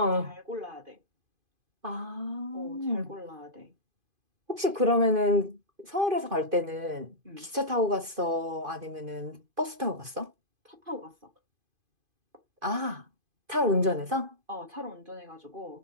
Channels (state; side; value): late; left; 2.5 ms